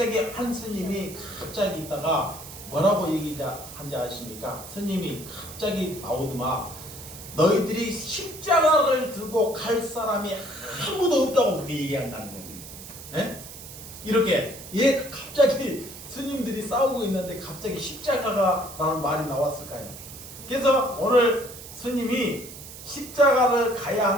한 스님이 갑자기 있다가 뭐라고 얘기한지 아십니까? 스님이 갑자기 나오더만, 너희들이 십자가를 들고 갈 사람이 아무도 없다고 그렇게 얘기한다는 거예요. 예? 이렇게 갑자기 스님들이 싸우고 있는데 갑자기 십자가라는 말이 나왔을까요? 그래서 오늘 스님이 십자가를 가야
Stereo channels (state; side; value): noise; right; hiss, 14 dB below the sound